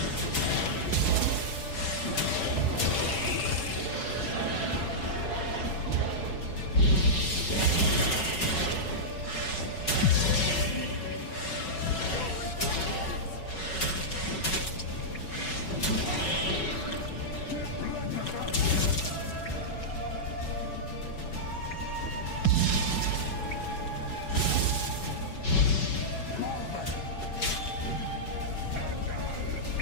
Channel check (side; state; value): right; late; 5.3 ms